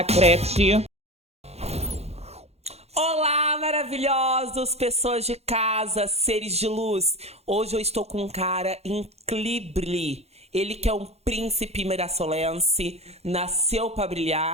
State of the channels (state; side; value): late; left; 0.31 ms